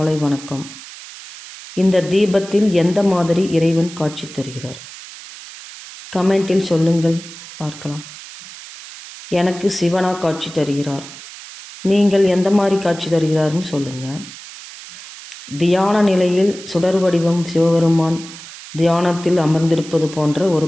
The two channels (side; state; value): right; noise; hiss, 15 dB below the sound